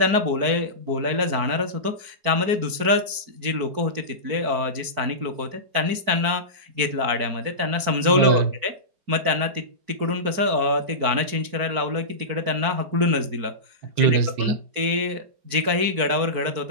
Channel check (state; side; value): late; left; 4.6 ms